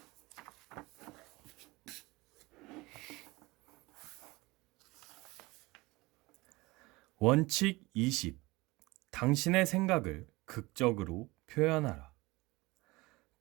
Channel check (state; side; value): quieter; left; 22.0 dB